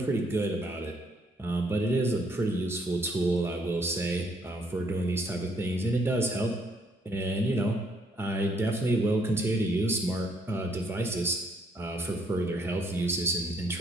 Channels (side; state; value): both; normal; correlation 0.68